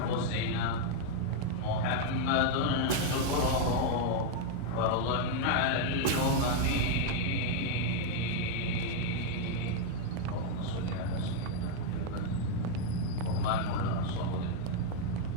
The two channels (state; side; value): different; both; correlation 0.00